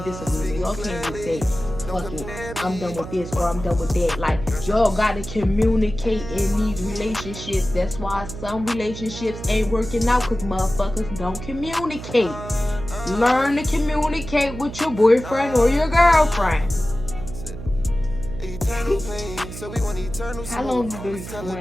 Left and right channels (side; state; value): right; noise; hum, 11 dB below the sound